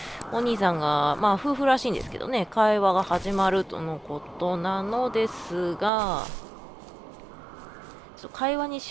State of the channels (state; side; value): drops out; left; at 5.9 s